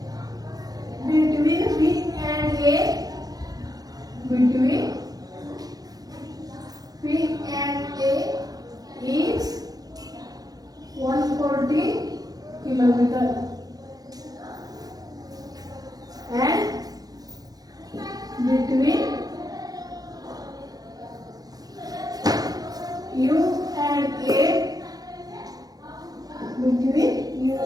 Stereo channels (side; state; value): left; late; 0.18 ms